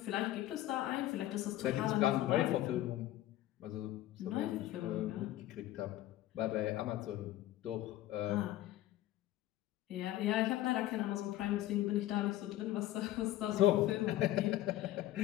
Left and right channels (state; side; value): quieter; right; 14.5 dB